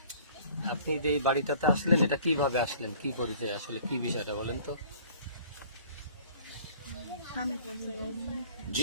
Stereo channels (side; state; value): both; inverted; correlation -0.51